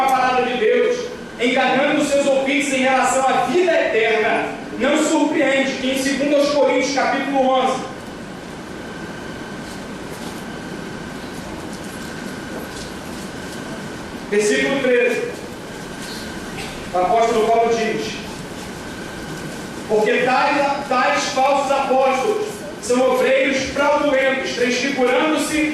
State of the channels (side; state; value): both; identical; correlation 1.00